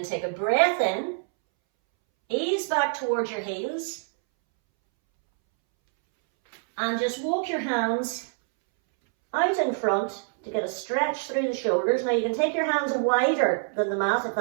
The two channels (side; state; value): left; silent; 61 dB below the other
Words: take a breath in, ease back towards your heels, and just walk your hands out in front to get a stretch through the shoulders. Now you can take your hands wider than the mat if